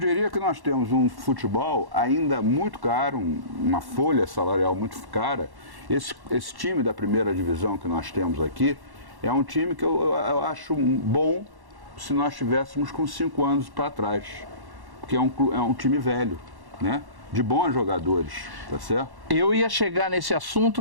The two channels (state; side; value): late; left; 1.1 ms